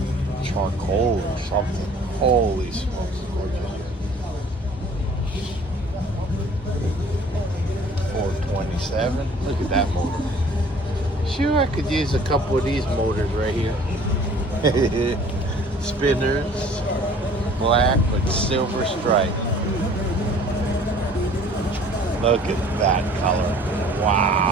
charcoal or something. Holy smokes, gorgeous. 427. Look at that motor. Sure, I could use a couple of these motors right here. Spinners, black with silver stripe. Look at that color.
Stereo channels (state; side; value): normal; both; correlation 0.52